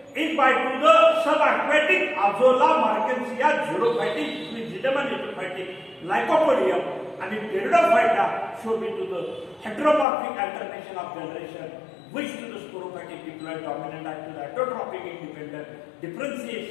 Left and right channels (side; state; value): right; drops out; at 10.1 s